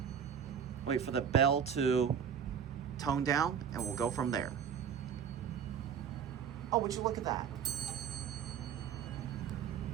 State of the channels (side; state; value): left; quieter; 7.8 dB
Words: Wait for the bell to tone down, and we'll go from there. Oh, would you look at that?